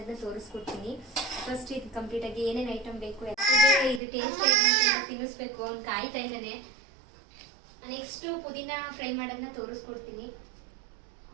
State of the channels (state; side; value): drops out; left; at 4.0 s